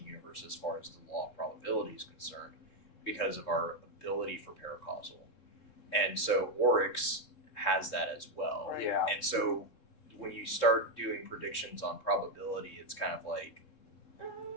universe as far as the law of probability is concerned, because of our ability for paracausal, and so Oryx has that as well. Right. Yeah. And so when you start doing predictions on probability, it's kind of like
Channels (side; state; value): right; late; 3.7 ms